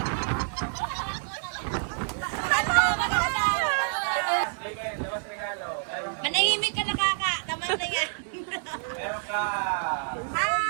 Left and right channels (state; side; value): silent; left; digital silence